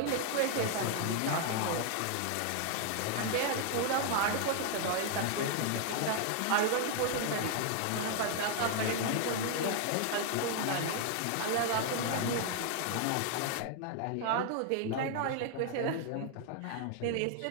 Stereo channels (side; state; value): both; different; correlation 0.00